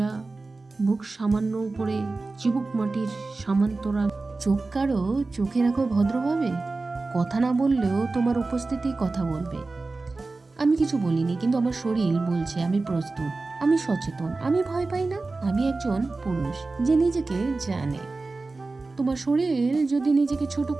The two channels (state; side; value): quieter; left; 3.6 dB